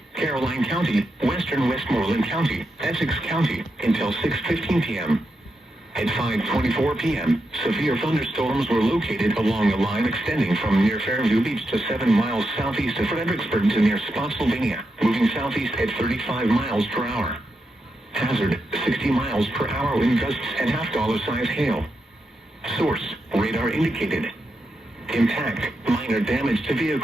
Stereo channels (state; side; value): normal; both; correlation 0.86